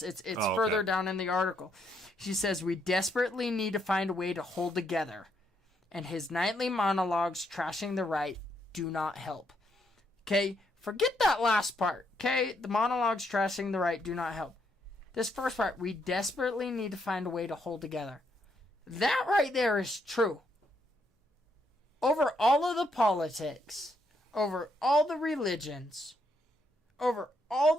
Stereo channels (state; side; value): normal; both; correlation 0.75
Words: It's further down in the article. She says, we desperately need to find a way to hold together, and his nightly monologues trashing the right do not help. Okay, forget that last part. Okay, the monologues trashing the right do not help. This first part, we desperately need to find a way to hold together. That right there is true. Over all of the politics, over all the religions, over all